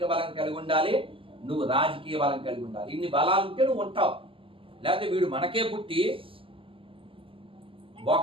బలం కలిగి ఉండాలి, నువ్వు రాజకీయ బలం కలిగి ఉండాలి. ఇన్ని బలాలు ఉంటే నువ్వు ఉంటావు. లేకపోతే వీడు మనకే పుట్టి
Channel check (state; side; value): late; left; 0.25 ms